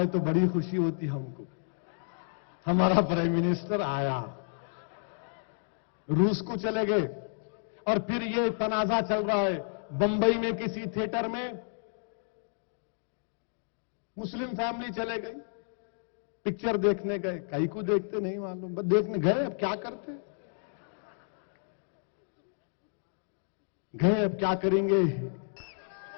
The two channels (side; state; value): right; silent; digital silence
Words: تو بڑی خوشی ہوتی ہم کو، ہمارا پرائم منسٹر آیا۔ روس کو چلے گئے، اور پھر یہ تنازع چل رہا ہے بمبئی میں کسی تھیٹر میں، مسلم فیملی چلے گئی، پکچر دیکھنے گئے، کئی کو دیکھتے نہیں معلوم، بس دیکھنے گئے، اب کیا کرتے گئے، اب کیا کریں گے؟